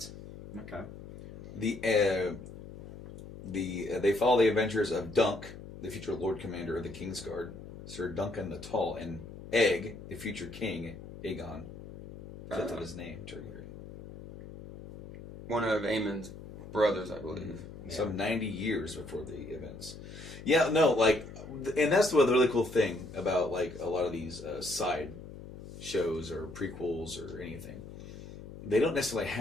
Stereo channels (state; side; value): noise; left; hum, 13 dB below the sound